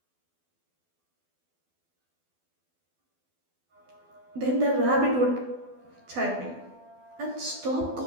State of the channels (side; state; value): left; late; 12 ms